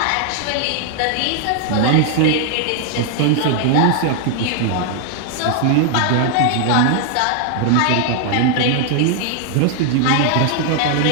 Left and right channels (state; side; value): different; both; correlation 0.00